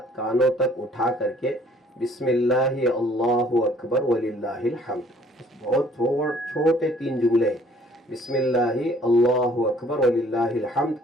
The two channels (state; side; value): normal; both; correlation 0.58